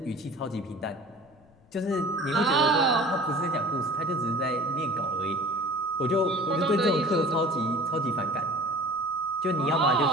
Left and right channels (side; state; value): left; noise; rumble, 30 dB below the sound